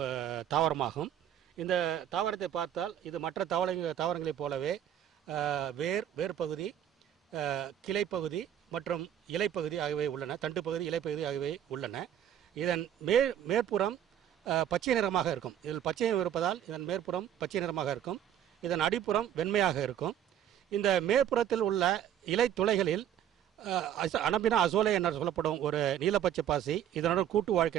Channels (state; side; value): quieter; left; 10.4 dB